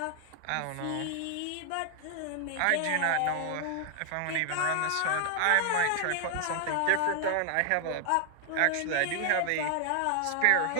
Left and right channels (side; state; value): both; different; correlation 0.00